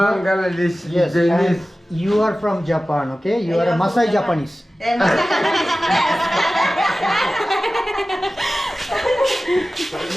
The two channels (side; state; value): both; normal; correlation 0.96